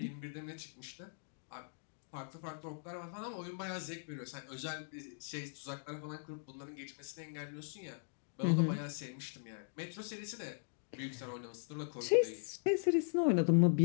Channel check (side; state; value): right; silent; digital silence